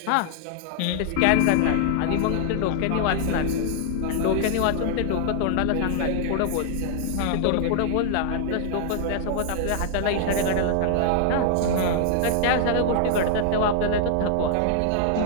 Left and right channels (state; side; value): different; both; correlation 0.00